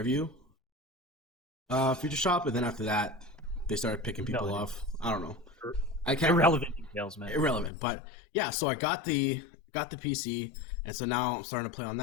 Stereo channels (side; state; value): right; drops out; at 7.7 s